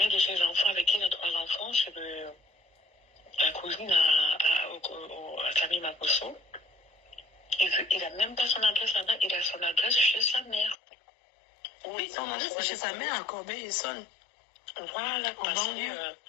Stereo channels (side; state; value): right; drops out; at 10.8 s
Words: de ses enfants, avec qui il a 3 enfants, c'est la cousine à Camille Makosso. Il n'a même pas son adresse là-bas, il a son adresse chez sa mère. Oui, son adresse c'est chez sa mère à Corbeil-Essonnes. Voilà,